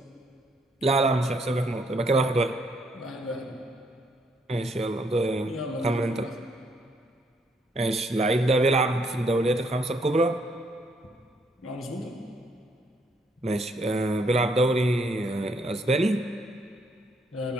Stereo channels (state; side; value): normal; both; correlation 0.71